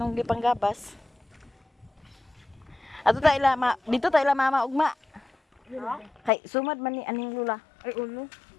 gipanggabas. Ato ta ila dito ta ila mama ugma. Kay sumad man ni aning lula. Ay uno.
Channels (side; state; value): right; drops out; at 6.3 s